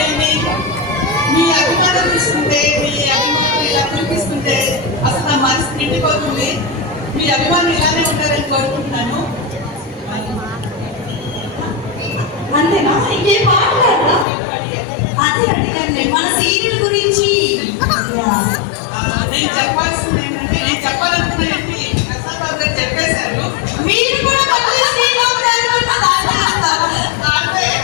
మీ అభిమానం తీసుకుంటే, మీ అభిమానం ఇలా చూపిస్తుంటే అసలు నా మనసు నిండిపోతుంది. మీ అభిమానం ఇలానే ఉంటారని కోరుకుంటున్నాను. అంతేనా? ఇంకేం మాట్లాడరా? అదే అడిగాను నేను మన సీరియల్ గురించి. నేను చెప్పాల్సింది ఏంటంటే, నేను చెప్పాలనుకున్నానంటే ప్రసాద్ బాబు గారు చెప్పేశారు. మీరు కూడా మళ్ళీ శ్రీరామ్ గారి గురించి మాట్లాడతారు.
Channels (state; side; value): drops out; right; at 14.2 s